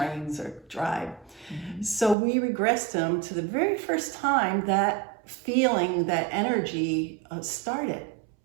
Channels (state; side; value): drops out; left; at 2.1 s